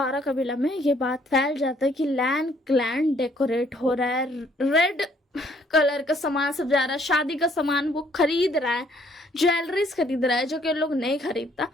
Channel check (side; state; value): both; normal; correlation 0.64